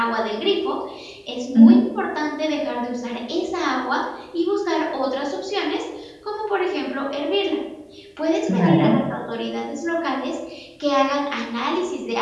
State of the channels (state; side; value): identical; both; correlation 1.00